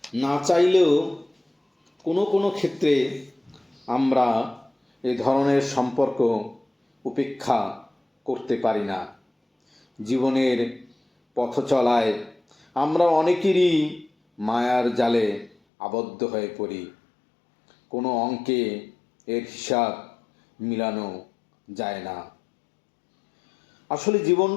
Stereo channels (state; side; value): drops out; right; at 15.6 s